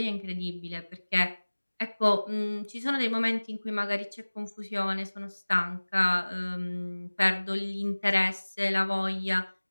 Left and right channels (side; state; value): both; inverted; correlation -1.00